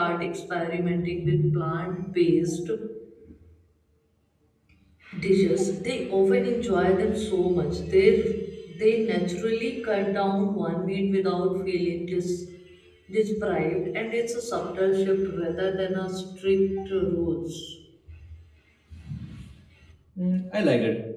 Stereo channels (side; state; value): both; identical; correlation 1.00